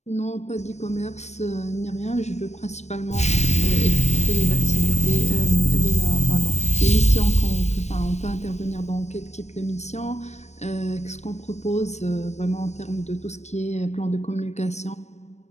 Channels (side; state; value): right; late; 0.32 ms